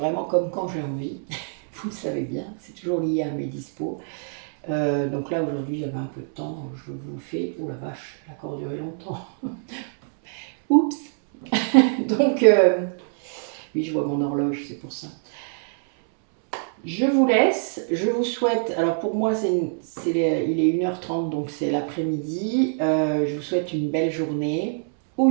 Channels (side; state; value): left; silent; 62 dB below the other